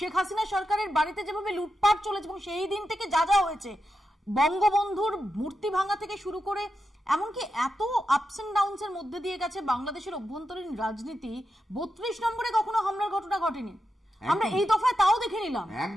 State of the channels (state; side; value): normal; both; correlation 0.88